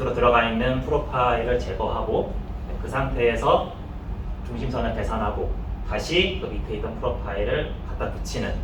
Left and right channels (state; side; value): identical; both; correlation 1.00